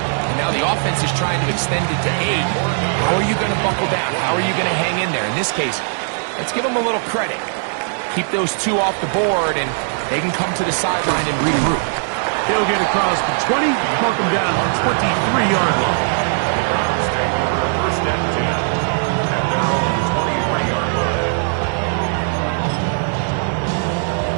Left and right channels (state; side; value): silent; left; digital silence